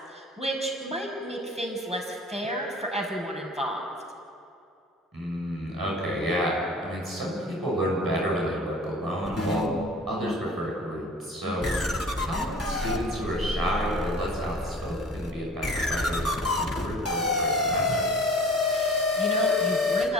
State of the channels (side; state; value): both; normal; correlation 0.44